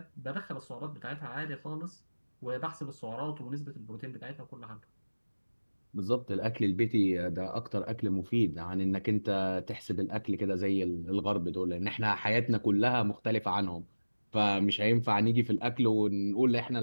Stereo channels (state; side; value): inverted; both; correlation -1.00